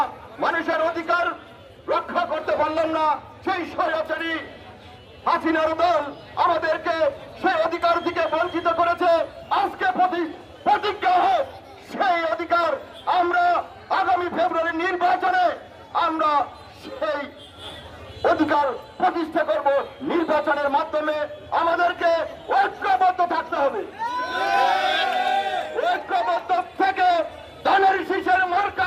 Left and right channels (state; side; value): identical; both; correlation 1.00